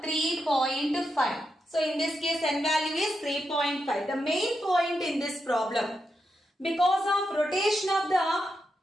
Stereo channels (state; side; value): normal; both; correlation 0.85